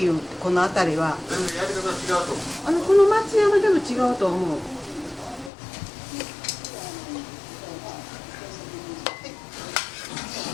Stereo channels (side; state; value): right; drops out; at 5.5 s